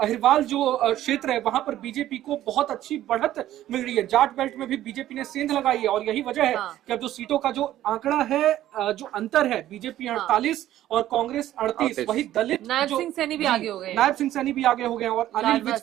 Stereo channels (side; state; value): left; quieter; 13.2 dB